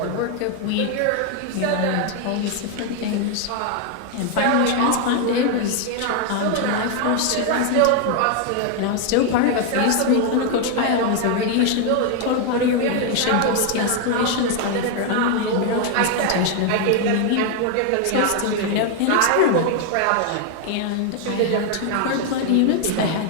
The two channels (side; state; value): both; different; correlation 0.01